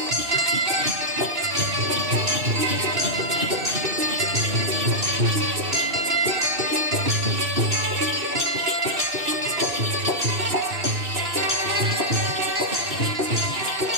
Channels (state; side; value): late; left; 2.6 ms